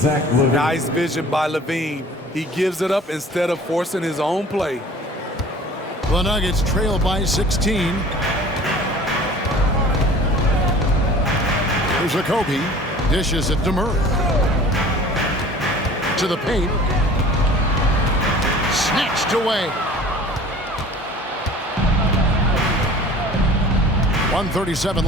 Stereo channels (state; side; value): normal; both; correlation 0.45